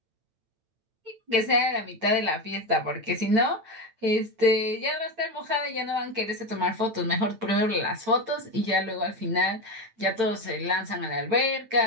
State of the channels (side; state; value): left; late; 8.9 ms